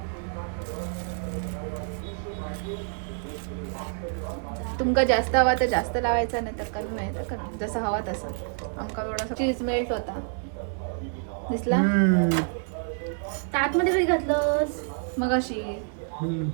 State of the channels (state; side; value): silent; left; 60 dB below the other